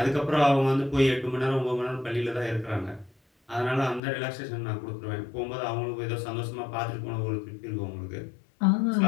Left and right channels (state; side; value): drops out; right; at 4.0 s